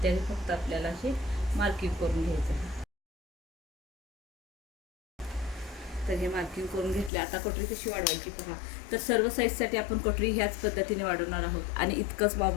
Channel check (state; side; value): drops out; right; at 7.1 s